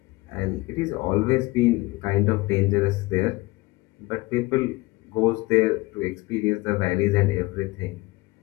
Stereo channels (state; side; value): quieter; right; 21.7 dB